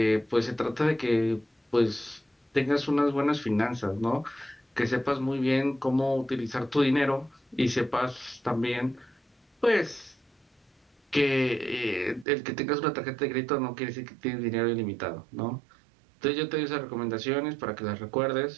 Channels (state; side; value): drops out; left; at 12.2 s